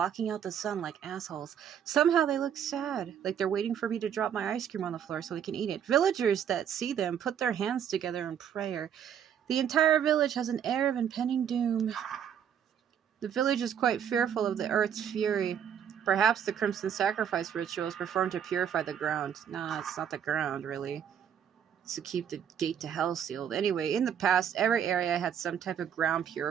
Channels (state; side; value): quieter; left; 8.7 dB